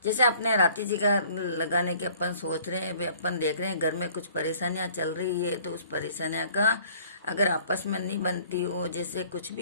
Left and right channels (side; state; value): both; inverted; correlation -0.54